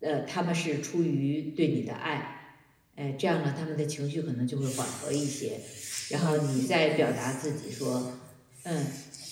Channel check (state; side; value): identical; both; correlation 1.00